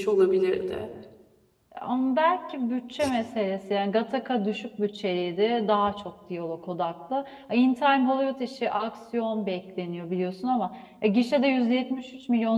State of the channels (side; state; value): both; identical; correlation 1.00